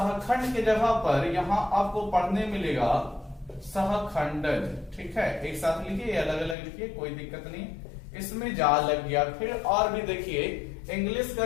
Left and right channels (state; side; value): drops out; right; at 6.6 s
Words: के जगह पर यहां आपको पढ़ने मिलेगा सहखंडज। ठीक है, एक साथ लिखिए, अलग अलग लिखिए, कोई दिक्कत नहीं, इसमें जा लग गया। फिर और भी देखिए, इंग्लिश का